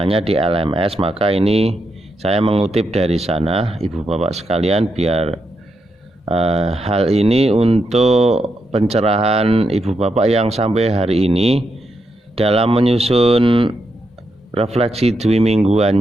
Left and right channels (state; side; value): normal; both; correlation 0.83